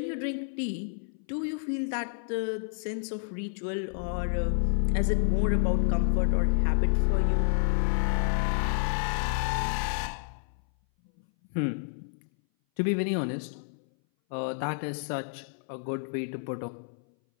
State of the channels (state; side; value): silent; right; 58 dB below the other